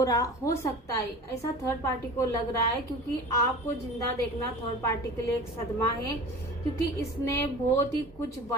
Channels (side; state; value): both; normal; correlation 0.38